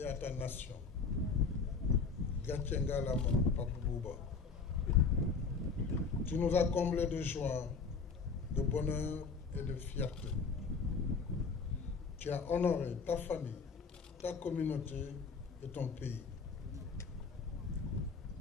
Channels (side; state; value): right; quieter; 5.0 dB